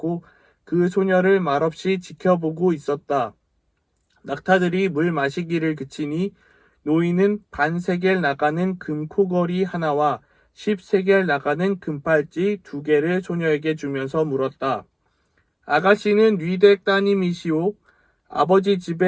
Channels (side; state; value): both; identical; correlation 1.00